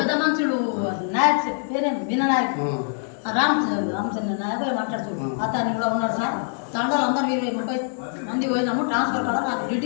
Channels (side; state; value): right; silent; digital silence